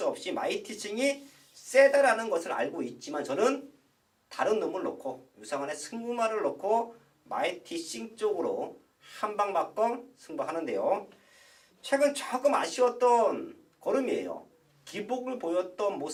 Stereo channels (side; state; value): both; identical; correlation 1.00